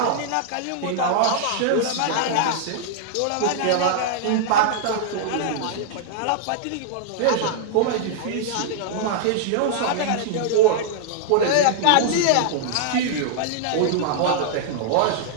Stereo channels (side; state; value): both; different; correlation -0.01